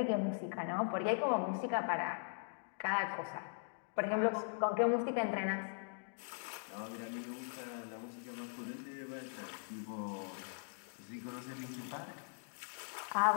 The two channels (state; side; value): silent; right; digital silence